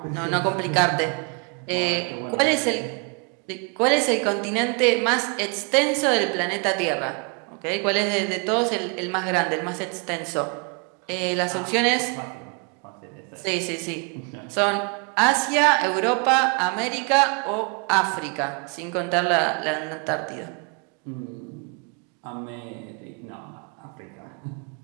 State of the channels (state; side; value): quieter; left; 34.4 dB